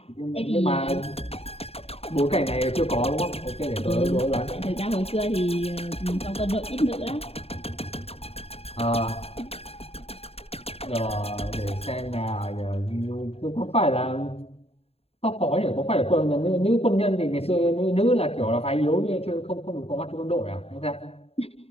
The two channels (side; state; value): right; late; 0.29 ms